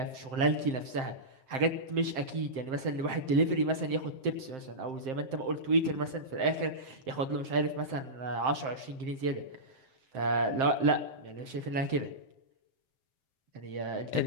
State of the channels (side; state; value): left; late; 7.7 ms